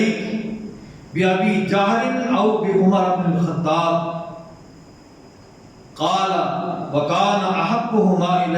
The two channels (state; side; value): identical; both; correlation 1.00